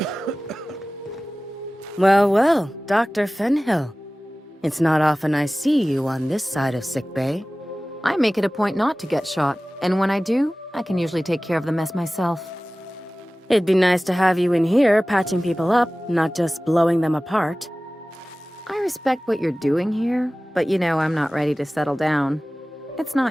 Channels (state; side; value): normal; both; correlation 0.97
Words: Well, well, Dr. Fenhill. It's not often I see you on this side of sickbay. I make it a point not to get shot, and when I do, I can usually take care of the mess myself. It'd be nice to have you in here patching people up, not just blowing them apart. I respect what you're doing here, but you know I'm not ready to settle down. It's